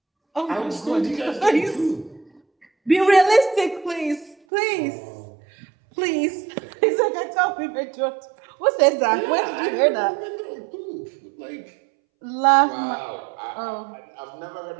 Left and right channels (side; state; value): left; drops out; at 4.4 s